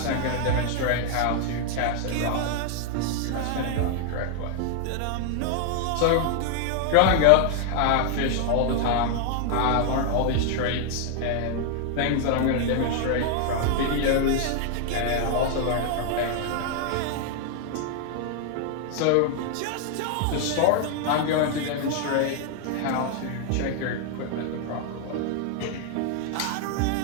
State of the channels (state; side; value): different; both; correlation 0.00